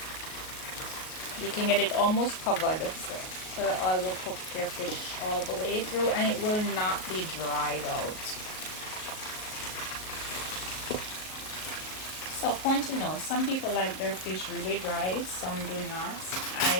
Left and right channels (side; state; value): right; late; 38 ms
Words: get it almost covered, so the oil will cook your fish all the way through and it will not be dried out. So point to note, some people like their fish really dry, some do not.